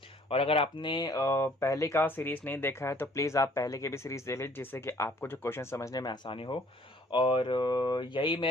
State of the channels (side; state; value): both; normal; correlation 0.58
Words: और अगर आपने पहले का सीरीज नहीं देखा है तो प्लीज़ आप पहले की भी सीरीज देख लीजिए, जिससे कि आपको जो क्वेश्चन समझने में आसानी हो। और यही